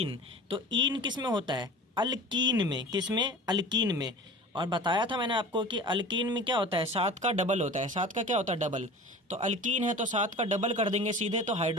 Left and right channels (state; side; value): normal; both; correlation 0.38